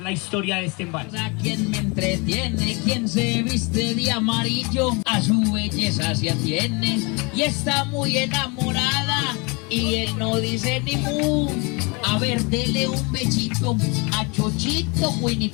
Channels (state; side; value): quieter; right; 29.6 dB